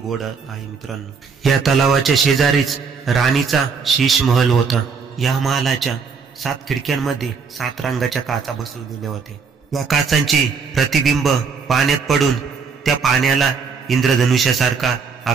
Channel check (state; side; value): quieter; left; 5.5 dB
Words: आहे मित्रांनो. या तलावाच्या शेजारीच राणीचा शीश महल होता. या महालाच्या 7 खिडक्यांमध्ये 7 रंगाच्या काचा बसवलेल्या होत्या. या काचांचे प्रतिबिंब पाण्यात पडून त्या पाण्याला इंद्रधनुष्यासारखा